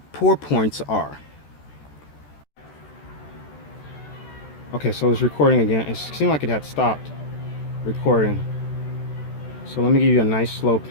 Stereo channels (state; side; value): late; right; 14 ms